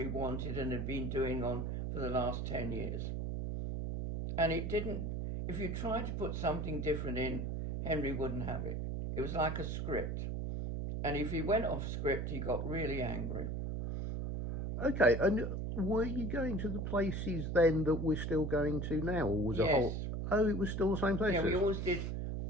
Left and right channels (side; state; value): right; noise; hum, 2 dB below the sound